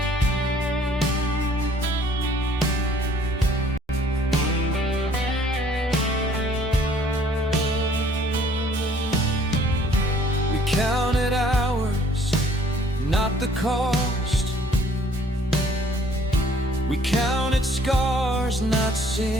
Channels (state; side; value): normal; both; correlation 0.58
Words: Counted hours, not the cost. We counted scars, not